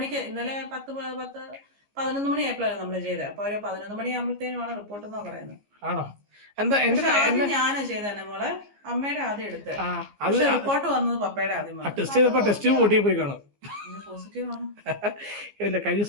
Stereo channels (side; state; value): left; late; 15 ms